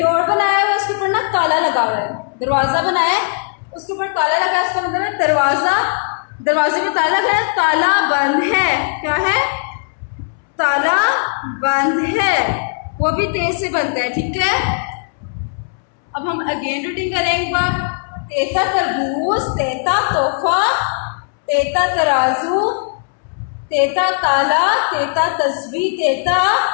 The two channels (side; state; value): right; silent; 68 dB below the other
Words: बनाया है, उसके ऊपर ना ताला लगा हुआ है. दरवाजा बनाया है, उसके ऊपर ताला लगा है, उसका मतलब है दरवाजा, दरवाजे में ताला लगा है. ताला बंद है. क्या है? ताला बंद है. वो भी तेज से बनता है. ठीक है. अब हम अगेन रीडिंग करें एक बार. तेता तरबूज. तेता तोहफा. तेता तराजू. तेता ताला. तेता तस्बीह. तेता